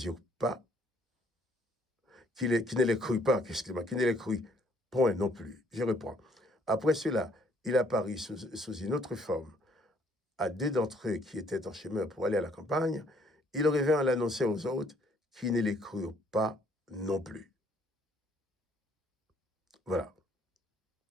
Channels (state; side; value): normal; both; correlation 0.64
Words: eurent pas, qui ne les crurent pas, qui ne les crurent point non plus. Je reprends. Après cela, il apparut sous une autre forme à 2 d'entre eux qui étaient en chemin pour aller à la campagne. Il revint l'annoncer aux autres, qui ne les crurent pas non plus. Voilà.